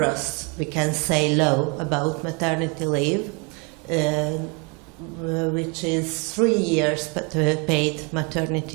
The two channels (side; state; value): left; quieter; 32.2 dB